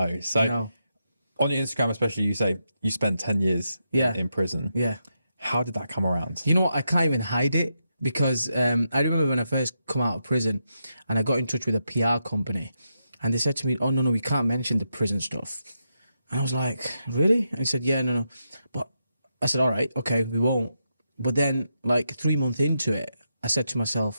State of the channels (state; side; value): inverted; both; correlation -0.84